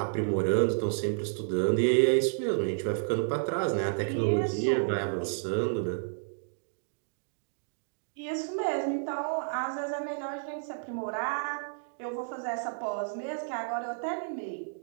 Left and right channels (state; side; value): silent; left; digital silence